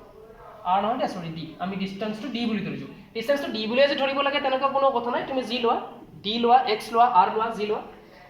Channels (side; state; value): both; identical; correlation 1.00